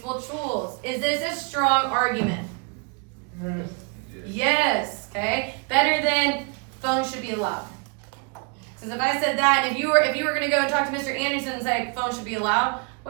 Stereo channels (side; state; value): left; quieter; 35.9 dB